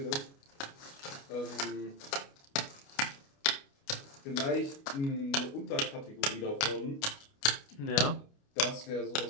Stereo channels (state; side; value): late; right; 29 ms